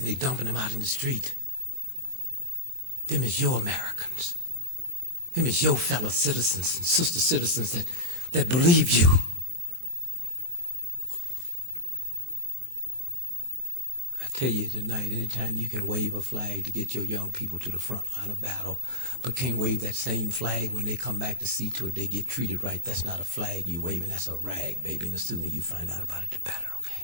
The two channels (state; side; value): late; left; 23 ms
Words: they dumping them out in the street. Them is your Americans. Them is your fellow citizens and sister citizens that believe you. I tell you tonight, anytime you can wave a flag to get your young people to the front line of battle, but can't wave that same flag when they come back to see to it they get treated right. That's not a flag you waving, that's a rag, baby. And the sooner you find out about it, the better, okay?